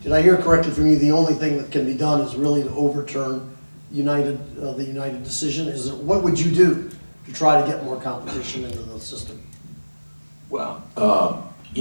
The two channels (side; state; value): both; inverted; correlation -1.00